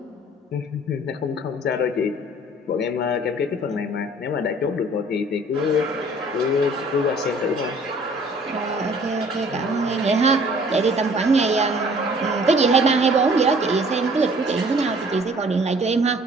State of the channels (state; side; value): normal; both; correlation 0.54